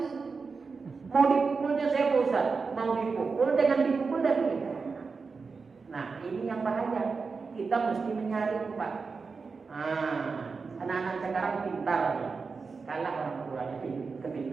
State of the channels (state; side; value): quieter; left; 4.7 dB